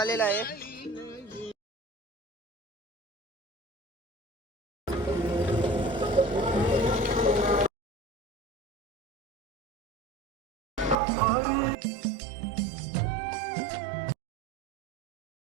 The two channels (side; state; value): left; drops out; at 11.0 s